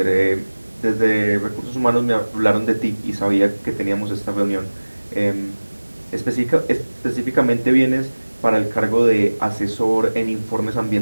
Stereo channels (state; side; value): inverted; both; correlation -1.00